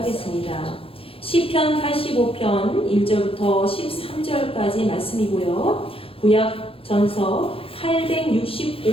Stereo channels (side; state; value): right; late; 0.27 ms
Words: 시편 85편 1절부터 13절까지 말씀이고요. 구약 전서